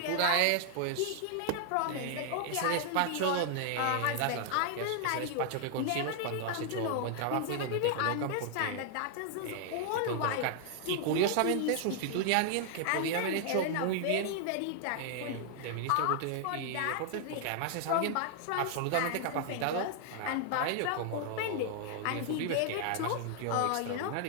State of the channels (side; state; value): both; different; correlation 0.00